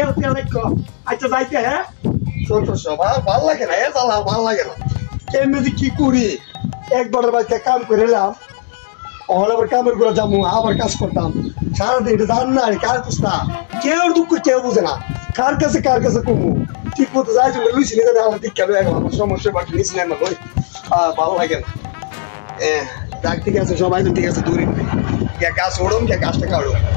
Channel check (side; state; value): right; silent; digital silence